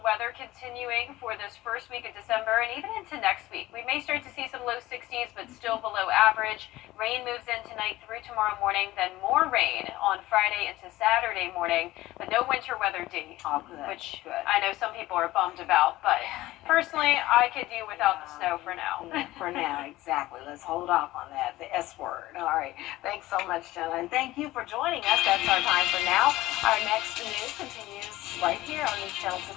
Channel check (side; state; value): right; quieter; 17.2 dB